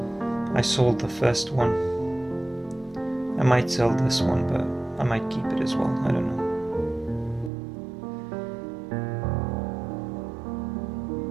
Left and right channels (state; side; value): drops out; left; at 7.5 s